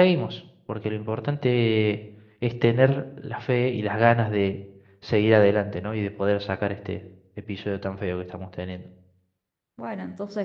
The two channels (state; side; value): identical; both; correlation 1.00